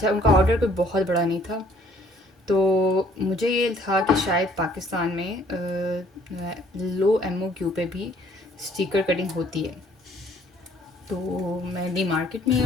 उनका ऑर्डर कोई बहुत बड़ा नहीं था, तो मुझे ये था कि शायद पाकिस्तान में लो एमओक्यू पे भी स्टिकर कटिंग होती है। तो मैं डी मार्केट में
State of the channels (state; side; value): normal; both; correlation 0.60